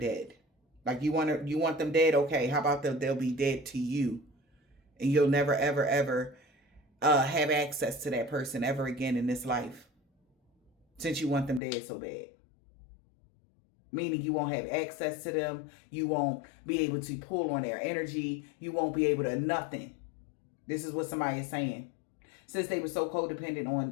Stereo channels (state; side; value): drops out; right; at 11.6 s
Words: Like you want them dead? Okay, how about they'll be dead to you. And you'll never, ever, ever have access to that person ever again in this life. Since you want them dead so bad. Meaning you won't have access to them. You won't be able to pull on their energy. You won't be able to nothing. This is what somebody is saying. Since they were so codependent